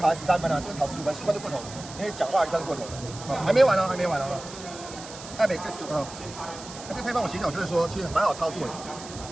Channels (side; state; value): right; noise; hiss, 14 dB below the sound